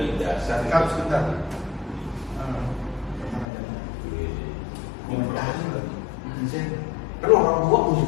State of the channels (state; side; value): drops out; right; at 3.5 s